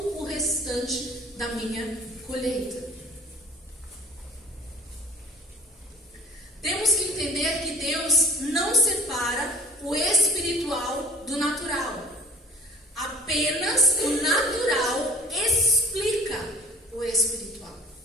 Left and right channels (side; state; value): both; normal; correlation 0.45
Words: o restante da minha colheita. Temos que entender que Deus não separa o espiritual do natural. Apenas o natural explica o espiritual.